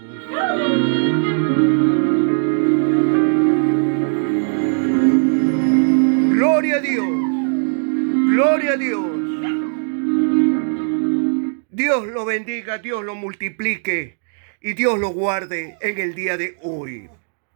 Gloria a Dios, gloria a Dios. Dios lo bendiga, Dios lo multiplique y Dios lo guarde en el día de hoy.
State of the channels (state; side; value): silent; left; digital silence